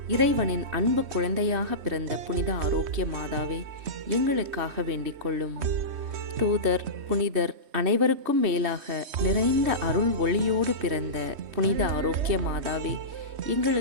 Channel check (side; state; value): left; late; 3.2 ms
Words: இறைவனின் அன்பு குழந்தையாக பிறந்த புனித ஆரோக்கிய மாதாவே, எங்களுக்காக வேண்டிக் கொள்ளும். தூதர் புனிதர் அனைவருக்கும் மேலாக நிறைந்த அருள் ஒளியோடு பிறந்த புனித ஆரோக்கிய மாதாவே,